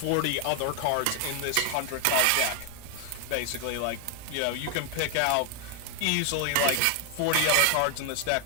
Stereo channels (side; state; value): both; different; correlation 0.01